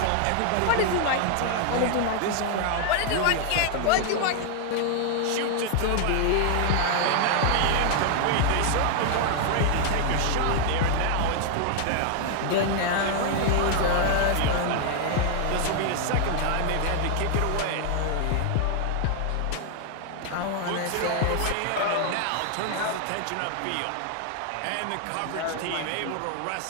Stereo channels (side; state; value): both; different; correlation 0.00